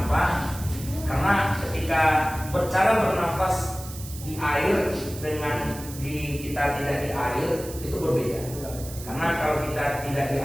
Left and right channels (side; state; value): right; noise; hiss, 14 dB below the sound